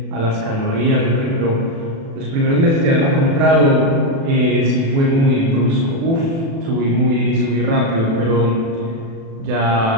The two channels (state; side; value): late; left; 36 ms